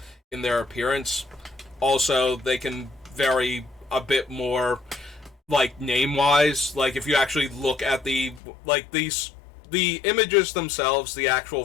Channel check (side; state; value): right; drops out; at 8.4 s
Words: their appearance. Also, they can vary a bit more, like, name-wise. Like, if you actually look at the images themselves, the actual